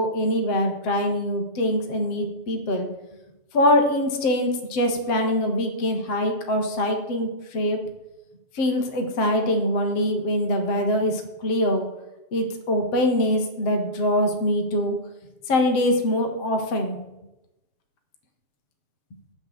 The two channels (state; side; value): late; right; 7.6 ms